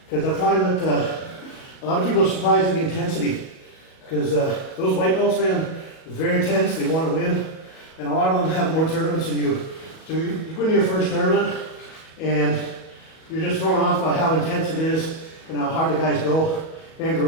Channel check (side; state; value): right; late; 37 ms